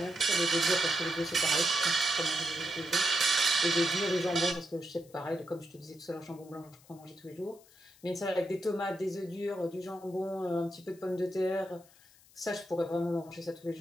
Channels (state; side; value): noise; left; hiss, 26 dB below the sound